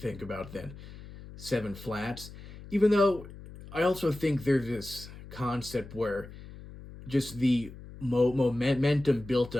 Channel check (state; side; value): noise; left; hum, 16 dB below the sound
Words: about than 7 flats. Even though I also think there's this concept where just the momentum built